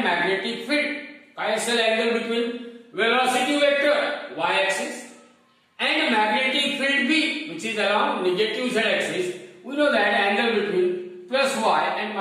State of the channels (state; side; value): identical; both; correlation 1.00